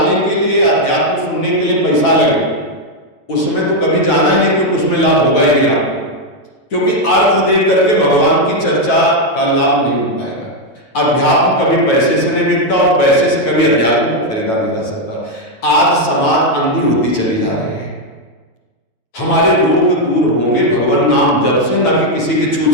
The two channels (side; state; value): right; late; 9.2 ms